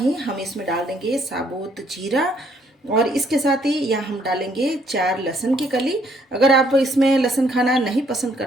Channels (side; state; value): both; normal; correlation 0.66